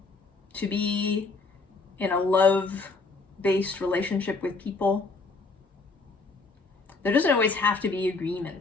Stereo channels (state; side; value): quieter; right; 3.9 dB